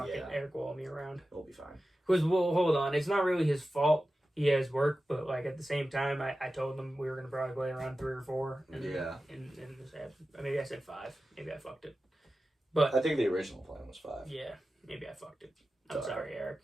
it. Eric will me around. It'll be fine. Because, well, hold on. It's not really his fault. He has work, but like at the same time, I told him we were gonna probably play around 3 or 4. And maybe I said 5. Maybe I fucked it. But I think the original plan was 5. Yeah, maybe I fucked it. I'm sorry,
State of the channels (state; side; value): normal; both; correlation 0.94